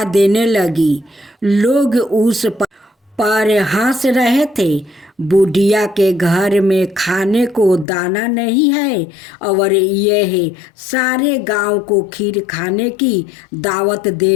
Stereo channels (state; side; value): drops out; right; at 7.9 s